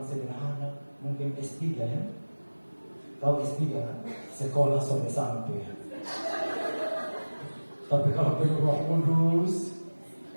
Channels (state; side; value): inverted; both; correlation -1.00